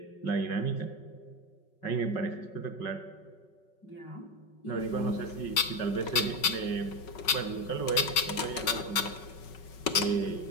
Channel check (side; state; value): right; late; 5.3 ms